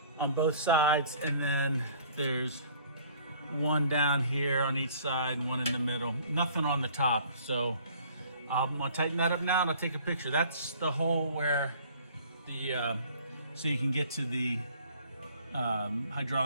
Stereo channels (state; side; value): inverted; both; correlation -0.54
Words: on both sides, and then there's one down here on each side and one in the middle. Nothing on the top. So I'm gonna tighten that up now and I'll take a picture. That's the hole where the, so you can get to the